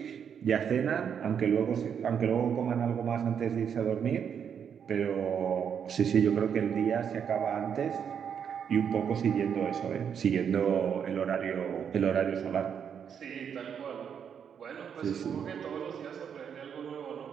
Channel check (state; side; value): quieter; left; 7.7 dB